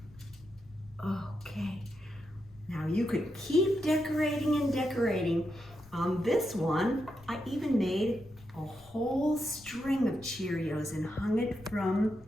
Okay. Now you could keep decorating and decorating. On this one, I even made a whole string of Cheerios and hung it from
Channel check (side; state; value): left; noise; rumble, 24 dB below the sound